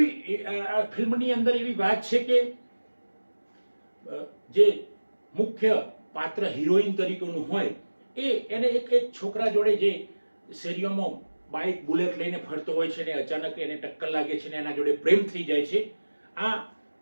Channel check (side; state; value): both; inverted; correlation -1.00